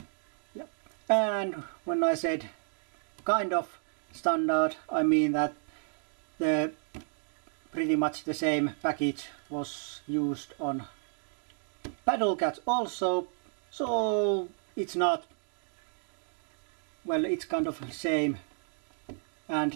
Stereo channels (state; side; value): silent; left; 57 dB below the other